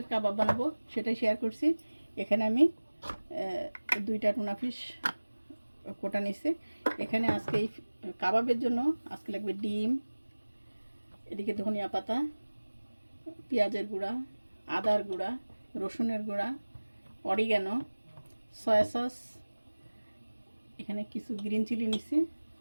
কাবাব বানাবো, সেটাই শেয়ার করছি। এখানে আমি দুইটা টুনা ফিশ কোটা নিচ্ছি। এখানে আজকে এই কাবাবের জন্য আজকে লাগবে ডিম, এদিকে ধনিয়া পাতা, পেঁয়াজের গুঁড়া, আদার গুঁড়া, রসুনের গুঁড়া, অরিগ্যানো, সয়া সস, এখানে কিছু গ্রিন চিলি নিচ্ছি,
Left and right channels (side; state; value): both; inverted; correlation -1.00